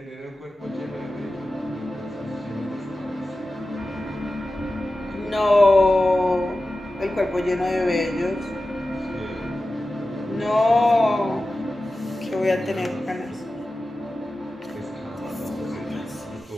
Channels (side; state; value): both; normal; correlation 0.94